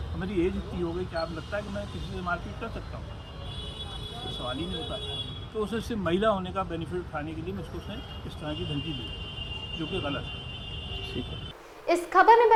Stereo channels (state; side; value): identical; both; correlation 1.00